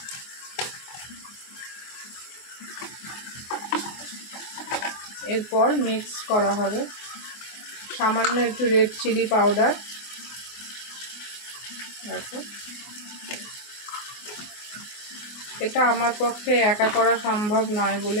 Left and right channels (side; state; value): right; late; 24 ms